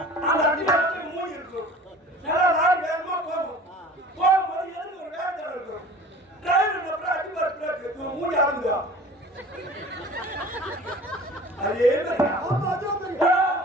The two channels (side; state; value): both; normal; correlation 0.43